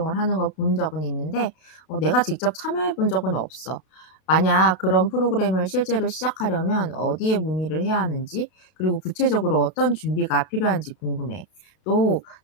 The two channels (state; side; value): late; right; 32 ms